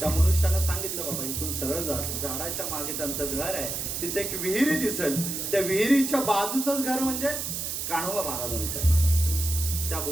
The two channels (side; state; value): right; noise; hiss, 3 dB below the sound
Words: मनुष्यानं सांगितलं, बाबा इथून सरळ जा, झाडाच्या मागे त्यांचं घर आहे, तिथे एक विहीर दिसेल, त्या विहिरीच्या बाजूचंच घर म्हणजे कान्होबा महाराजांचं आहे. त्या